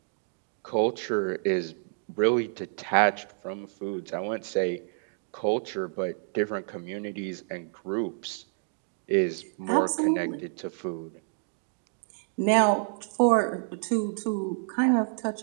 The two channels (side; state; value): left; silent; 59 dB below the other